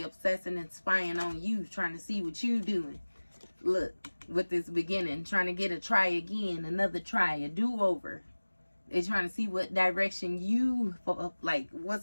obsessing and spying on you, trying to see what you doing. Look, with this beginning, trying to get a try again, another try, a do-over. They're trying to see what direction you, like,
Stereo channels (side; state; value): both; inverted; correlation -1.00